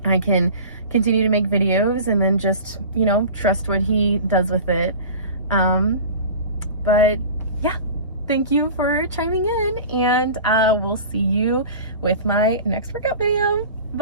I can continue to make videos and then just, you know, trust what he does with it. But yeah, thank you for chiming in, and we'll see you with my next workout video.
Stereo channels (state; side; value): inverted; both; correlation -0.37